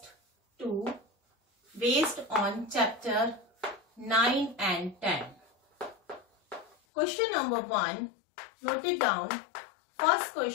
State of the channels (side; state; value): right; drops out; at 6.8 s